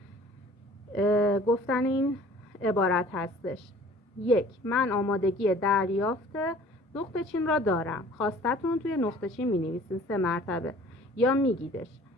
گفتن این عبارت هستش: 1. من آمادگی دریافت نقطه چین را دارم. خواستتون توی نقطه چین می نویسین 3 مرتبه یا میگیدش.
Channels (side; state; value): both; normal; correlation 0.50